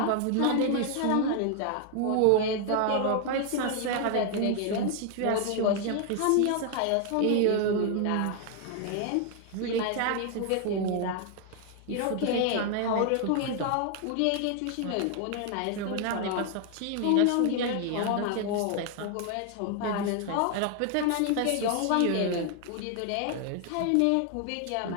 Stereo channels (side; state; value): both; different; correlation 0.00